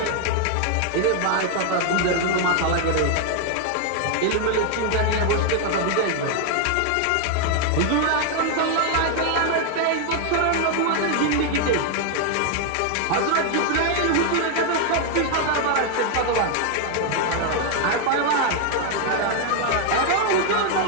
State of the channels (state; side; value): different; both; correlation 0.00